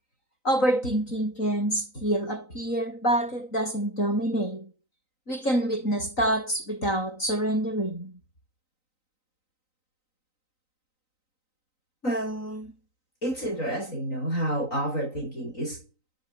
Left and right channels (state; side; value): late; right; 3.9 ms